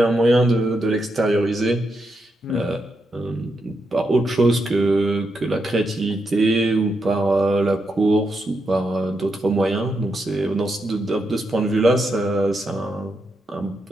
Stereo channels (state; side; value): normal; both; correlation 0.83